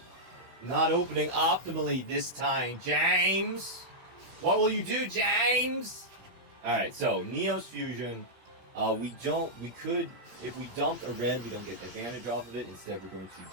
Not opening optimally this time, James! What will you do, James? Alright, so Neos Fusion, if we dumped a red, we don't get the advantage off of it. Instead, we're going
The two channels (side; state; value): left; late; 16 ms